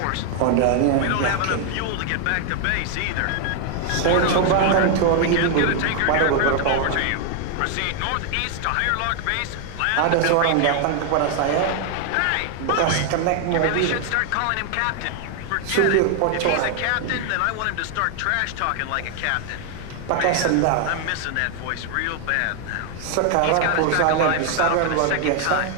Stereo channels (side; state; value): both; different; correlation 0.00